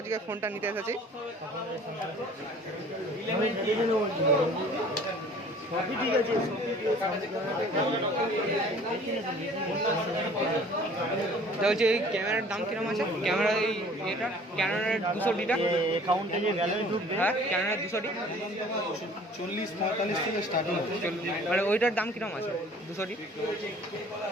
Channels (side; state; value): both; normal; correlation 0.50